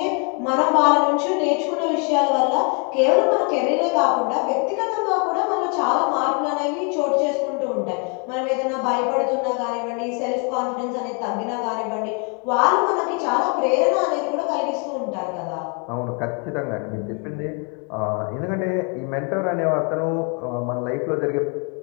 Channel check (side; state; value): right; quieter; 36.5 dB